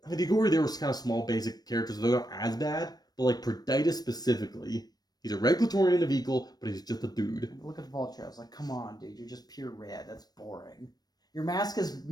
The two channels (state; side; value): late; right; 0.19 ms